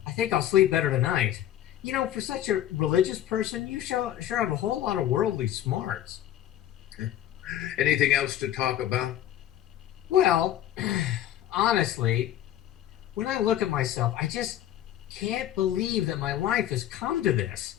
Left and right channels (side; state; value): right; quieter; 12.0 dB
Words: think I'll sleep better tonight. You know, for such a religious person, you sure have a whole lot of worldly smarts. Anything else to talk about? Well, honestly, when I look at myself, I just can't believe that my life has come to this.